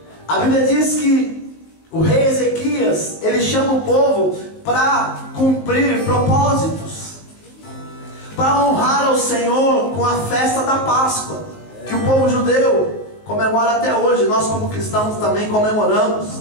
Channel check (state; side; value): late; right; 19 ms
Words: A Bíblia diz que o rei Ezequias, ele chama o povo para cumprir propósitos, para honrar ao Senhor com a festa da Páscoa, que o povo judeu comemora até hoje. Nós como cristãos também comemoramos.